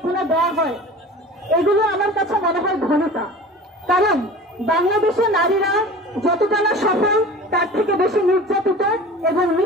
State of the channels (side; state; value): both; normal; correlation 0.38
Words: দেওয়া হয়, এগুলো আমার কাছে মনে হয় ঘনতা। কারণ বাংলাদেশে নারীরা যতটা না সফল তার থেকে বেশি নির্যাতিত এবং